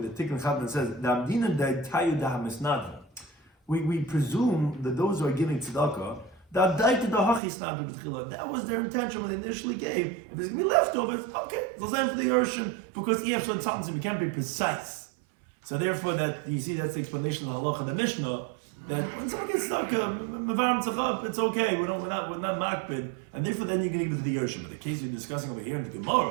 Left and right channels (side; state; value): left; drops out; at 7.4 s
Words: Tikkun Chatan says, we presume that those who are giving tzedakah, that was their intention when they initially gave. If there's going to be leftovers, okay, they'll send for the Yarshim, because EF something we can't be precise. So therefore, that you see that's the explanation of the halacha of the Mishnah, that when someone gets stuck, it's okay. We're not makbid, and therefore then you can give it to the Yarshim. But the case you're discussing over here in the